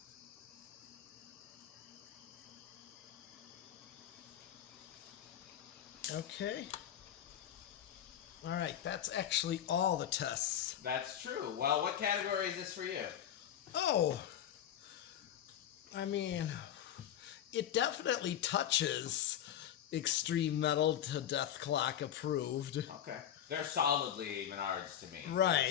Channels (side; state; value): right; quieter; 10.5 dB